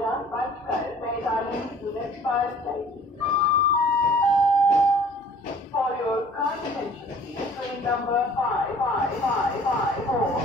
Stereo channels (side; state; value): both; normal; correlation 0.51